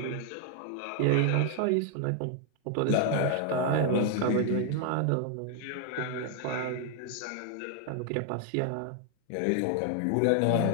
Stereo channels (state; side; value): different; both; correlation 0.00